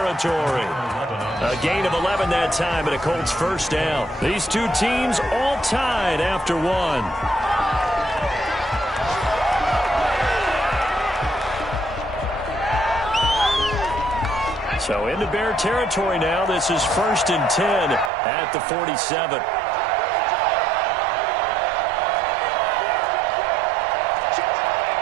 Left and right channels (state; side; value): drops out; left; at 18.1 s